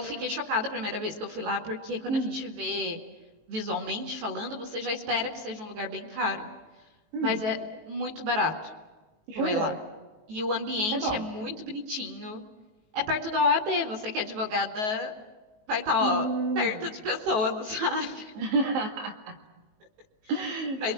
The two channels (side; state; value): left; late; 19 ms